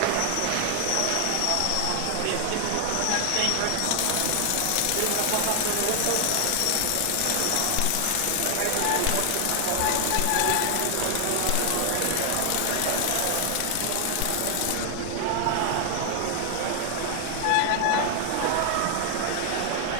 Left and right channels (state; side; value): different; both; correlation 0.00